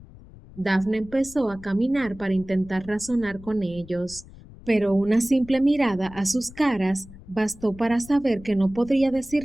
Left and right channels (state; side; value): noise; left; rumble, 19 dB below the sound